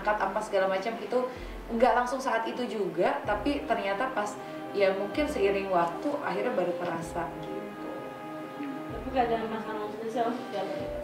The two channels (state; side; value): identical; both; correlation 1.00